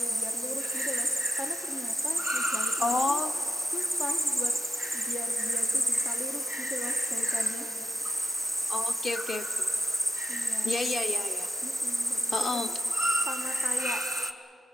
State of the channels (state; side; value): normal; both; correlation 0.82